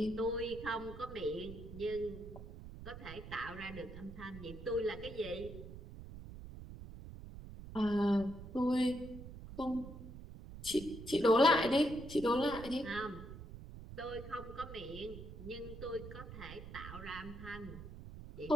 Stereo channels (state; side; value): noise; right; rumble, 12 dB below the sound